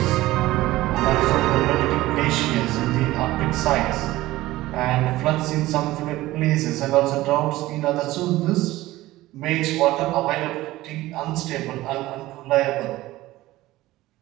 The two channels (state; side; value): quieter; left; 17.2 dB